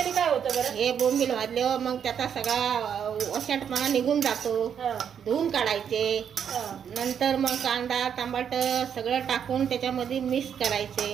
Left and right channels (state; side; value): quieter; left; 8.1 dB